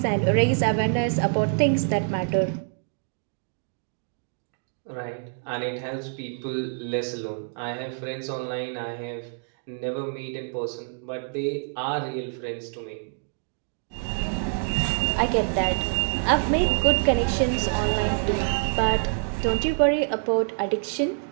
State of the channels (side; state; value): left; silent; digital silence